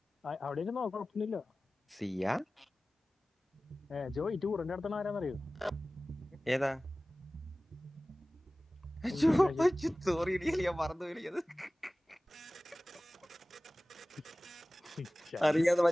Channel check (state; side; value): normal; both; correlation 0.97